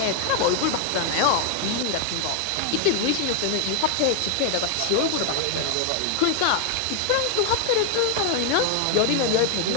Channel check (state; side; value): different; both; correlation 0.00